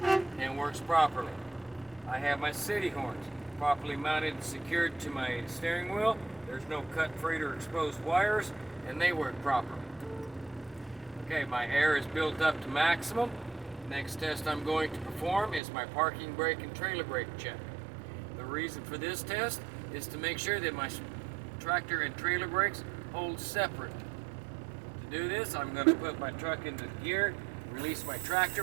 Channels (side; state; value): left; drops out; at 15.6 s